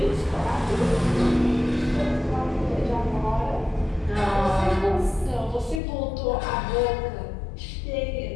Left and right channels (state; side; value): drops out; right; at 5.8 s